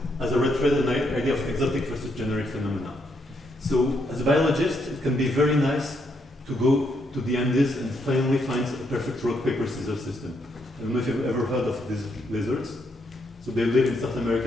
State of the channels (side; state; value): both; normal; correlation 0.76